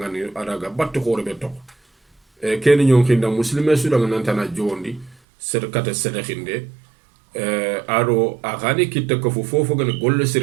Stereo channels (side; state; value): left; drops out; at 5.2 s